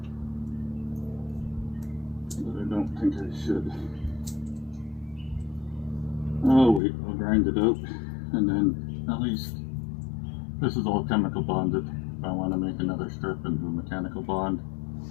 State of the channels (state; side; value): drops out; right; at 6.8 s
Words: but I don't think I should. Oh wait, I'll grind it out, and then at least this is all chemical bonded. If I want to make another strip and do a mechanical bond